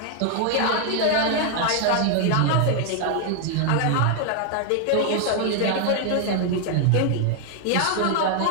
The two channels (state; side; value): different; both; correlation 0.00